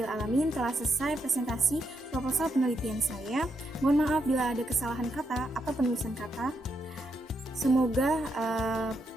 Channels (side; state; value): both; normal; correlation 0.81